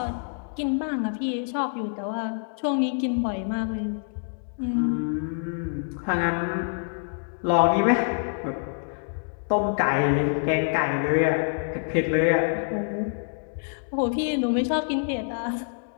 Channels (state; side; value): silent; right; digital silence